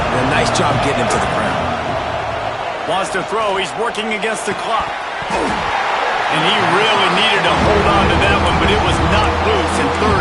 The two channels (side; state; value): both; identical; correlation 1.00